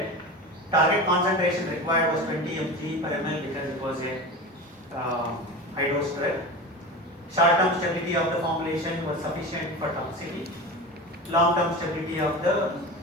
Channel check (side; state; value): both; normal; correlation 0.29